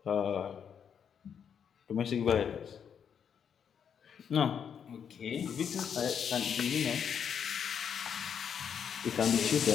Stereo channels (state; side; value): quieter; right; 7.7 dB